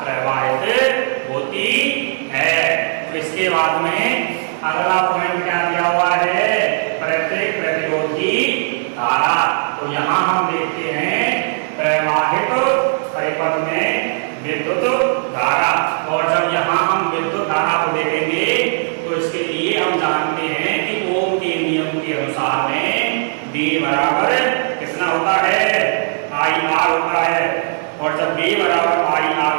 प्रवाहित होती है। तो इसके बाद में अगला पॉइंट क्या दिया हुआ है, प्रत्येक प्रतिरोध की धारा। तो यहाँ हम देखते हैं प्रवाहित परिपथ में विद्युत धारा, और जब यहाँ हम विद्युत धारा को देखेंगे तो इसके लिए हम जानते हैं कि ओम के नियम के अनुसार में B बराबर कितना होता है IR होता है, और जब B बराबर IR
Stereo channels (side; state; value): left; silent; 61 dB below the other